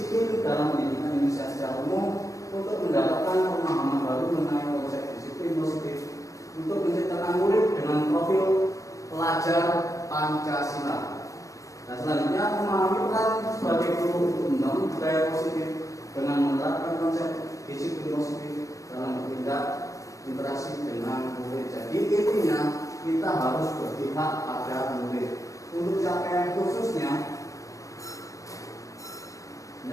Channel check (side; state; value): right; late; 0.16 ms